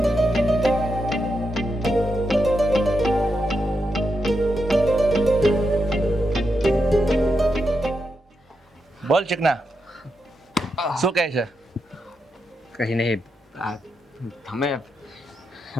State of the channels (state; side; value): normal; both; correlation 0.84